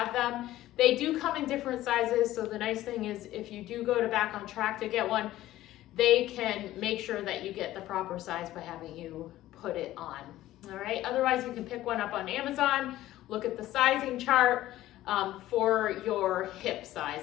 them. They do come in different sizes, so the nice thing is if you do go to Back on Track to get one, they can make sure that you get the proper size by having you put it on, all right? Otherwise, you can pick one up on Amazon, look at the sizing chart for your hip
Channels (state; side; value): quieter; right; 14.9 dB